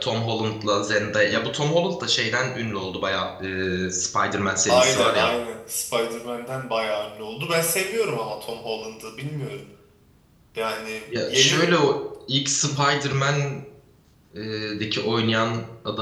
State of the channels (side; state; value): both; identical; correlation 1.00